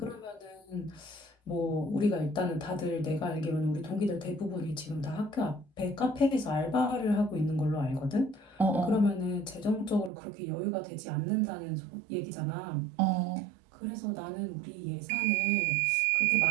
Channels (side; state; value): left; drops out; at 10.1 s